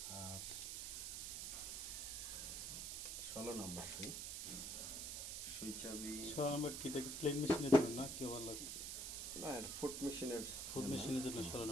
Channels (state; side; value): noise; right; hiss, 3 dB below the sound